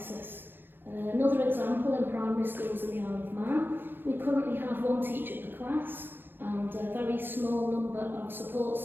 Another example, in primary schools in the Isle of Man, we currently have one teacher per class and a very small number of support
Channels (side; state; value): left; late; 0.099 ms